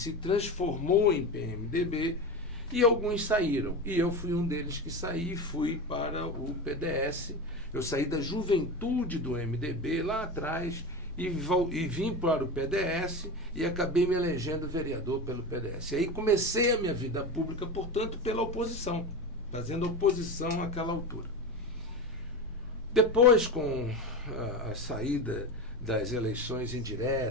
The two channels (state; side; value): noise; left; rumble, 24 dB below the sound